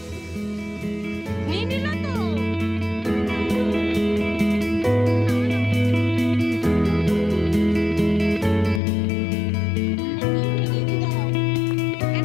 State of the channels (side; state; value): right; drops out; at 8.8 s